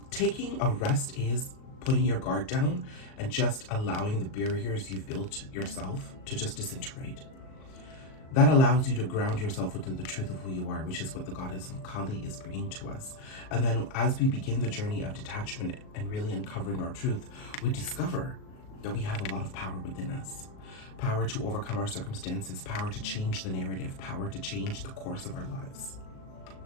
taking a rest is putting your guard down and just allowing the barriers you've built yourself to just disintegrate. That allows you to ground yourself within the truth of who you are, which is what the goddess of Kali is bringing to us. And then as we begin the journey of detachment and really uncovering our truth, we discover that we have a lot of power within us. Power to overcome our circumstances, power to change the narrative, power to change the course of our lives.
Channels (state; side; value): late; right; 38 ms